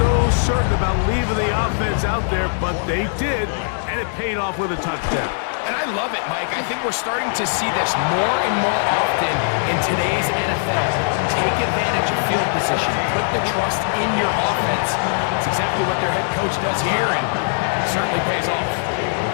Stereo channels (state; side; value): silent; right; 64 dB below the other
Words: certain about leaving the offense out there, but they did, and it paid off with a touchdown. And I love it, Mike. I think we're starting to see this more and more often in today's NFL. Take advantage of field position. Put the trust in your offense. That's exactly what their head coach does here, and it certainly pays off.